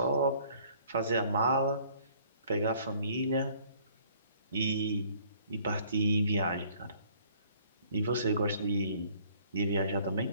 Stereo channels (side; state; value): both; inverted; correlation -0.58